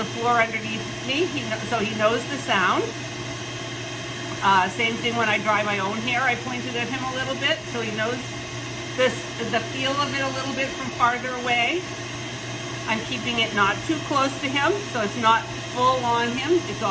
floor underneath me, so he knows the sound. Same thing when I dry my own hair, I pointed at him a little bit so he knows the feel of it a little bit from farther away. I'm keeping it not too close to him, so it's not full on him. It's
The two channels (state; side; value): identical; both; correlation 1.00